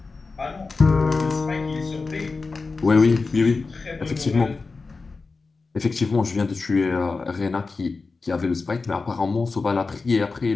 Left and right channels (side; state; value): right; quieter; 4.1 dB